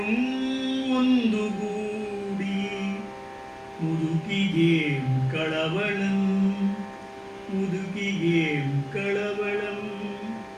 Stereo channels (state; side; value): identical; both; correlation 1.00